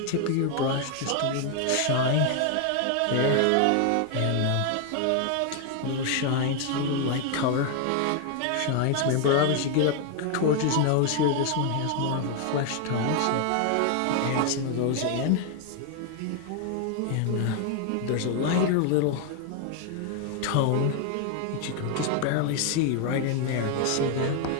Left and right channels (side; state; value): both; different; correlation 0.01